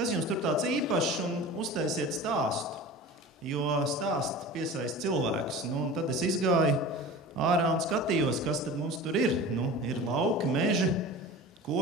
jums tur tāds īpašs, un uztaisiet stāstu, jo stāsti piesaista cilvēkus. Un tad es izgāju ārā un skatījos, kas tad mums tur ir. Ir lauki, meži,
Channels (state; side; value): normal; both; correlation 0.35